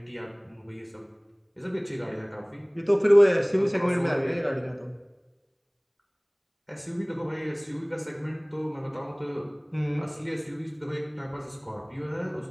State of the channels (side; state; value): both; identical; correlation 1.00